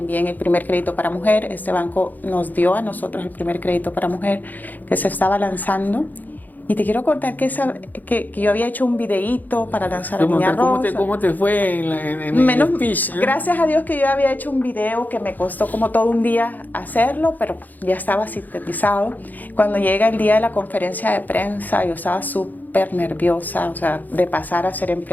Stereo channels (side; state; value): right; late; 0.084 ms